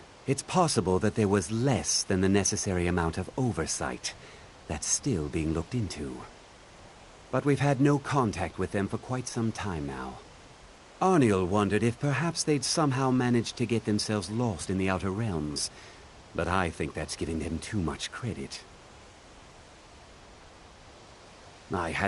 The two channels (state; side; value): identical; both; correlation 1.00